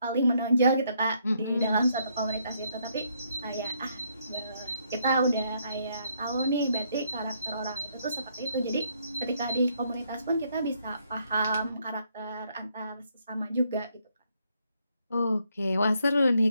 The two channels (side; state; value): both; inverted; correlation -0.73